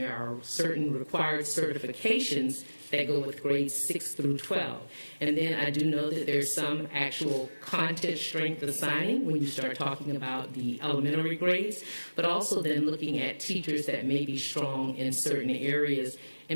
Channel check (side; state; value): both; inverted; correlation -1.00